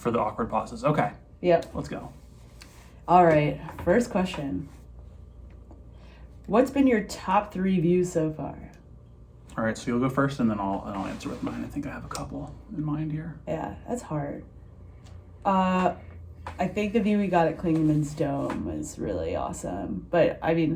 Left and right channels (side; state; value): both; identical; correlation 1.00